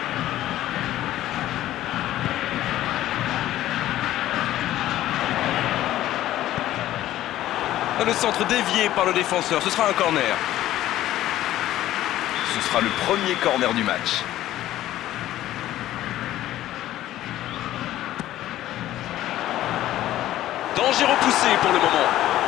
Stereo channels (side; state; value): right; quieter; 13.9 dB